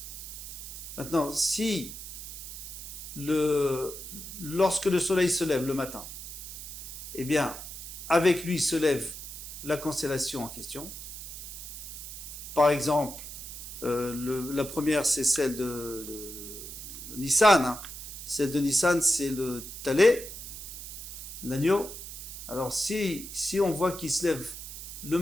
Maintenant, si lorsque le soleil se lève le matin, eh bien, avec lui se lève la constellation en question. Par exemple, la première, c'est celle de Nissan. Hein. Celle de Nissan, c'est le Talé, l'agneau. Alors, si on voit qu'il se lève le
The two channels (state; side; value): noise; right; hiss, 10 dB below the sound